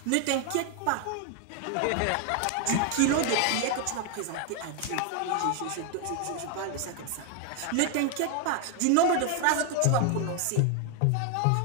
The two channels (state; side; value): different; both; correlation 0.01